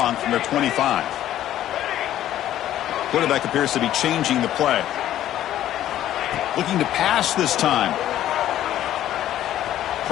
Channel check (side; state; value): right; quieter; 12.4 dB